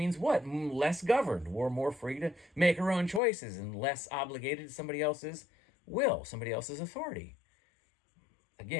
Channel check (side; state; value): right; drops out; at 3.2 s